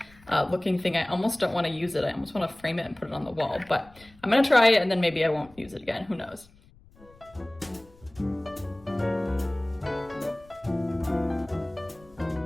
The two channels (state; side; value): noise; left; rumble, 26 dB below the sound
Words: looking thing. I almost don't want to use it. I almost want to frame it and put it on the wall, but I'm gonna try it and then maybe I won't use it again, who knows.